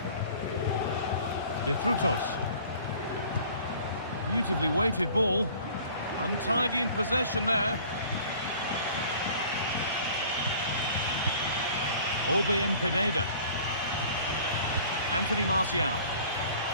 De Frutos. Beautifully weighted ball. Untidy in possession there. Orbien Pineda. Anthony Martial.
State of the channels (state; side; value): inverted; both; correlation -0.49